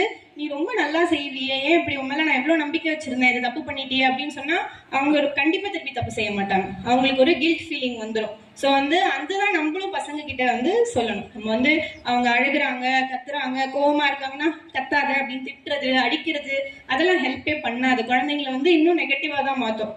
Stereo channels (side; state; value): both; identical; correlation 1.00